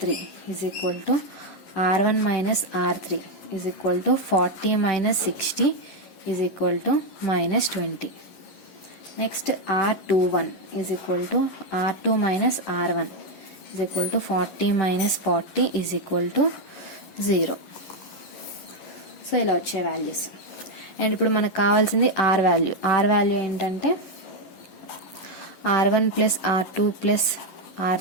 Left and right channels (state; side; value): late; right; 11 ms